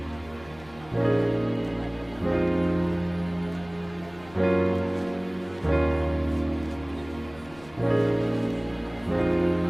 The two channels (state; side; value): noise; left; rumble, 23 dB below the sound